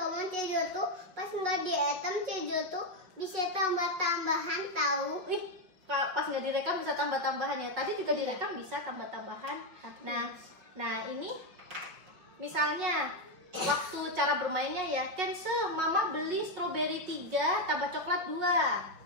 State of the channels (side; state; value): left; late; 5.8 ms